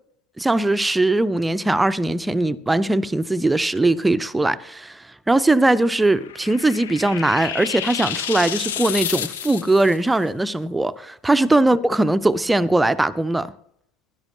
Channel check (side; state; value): both; normal; correlation 0.91